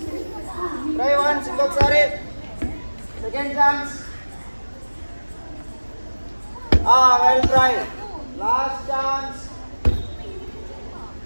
Try once, ఇంకొకసారి. Second chance. Well try. Last chance.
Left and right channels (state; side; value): inverted; both; correlation -1.00